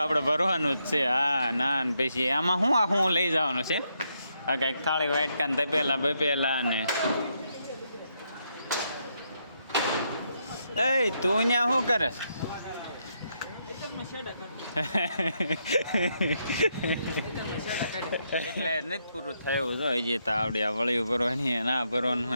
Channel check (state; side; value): inverted; both; correlation -0.78